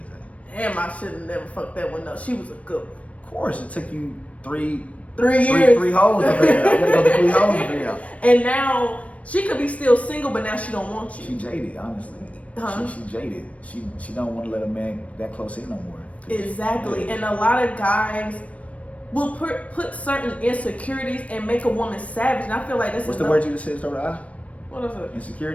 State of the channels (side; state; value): right; late; 0.065 ms